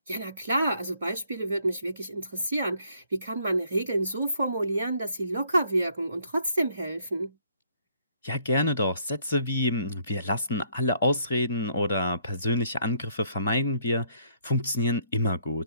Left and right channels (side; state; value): both; inverted; correlation -0.66